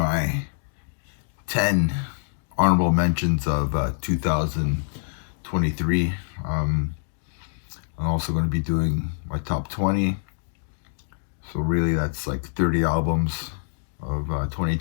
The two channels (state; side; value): silent; right; digital silence